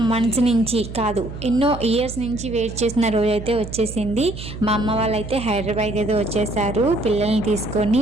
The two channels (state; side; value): noise; right; hum, 10 dB below the sound